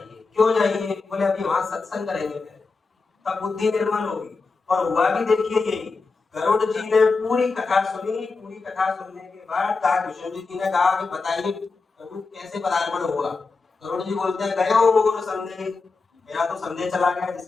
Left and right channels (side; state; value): right; quieter; 4.2 dB